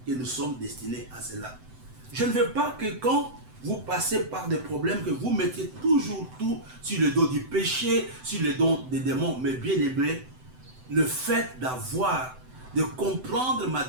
que nous sommes destinés à cela. Je ne veux pas que quand vous passez par des problèmes, que vous mettiez toujours tout sur le dos du péché, sur le dos des démons. Mais bien aimé, le fait de comprendre ma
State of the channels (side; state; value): left; late; 7.9 ms